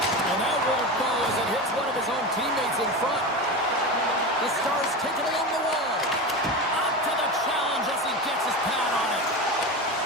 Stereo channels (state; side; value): normal; both; correlation 0.24